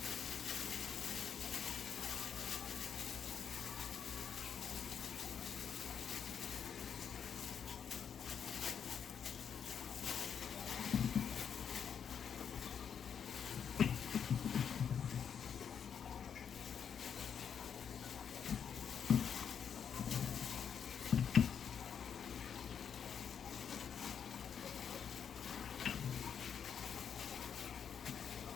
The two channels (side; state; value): right; quieter; 7.6 dB